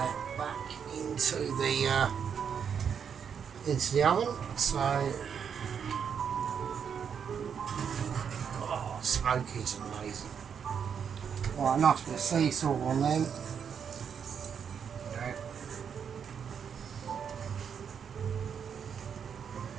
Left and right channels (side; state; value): left; quieter; 7.3 dB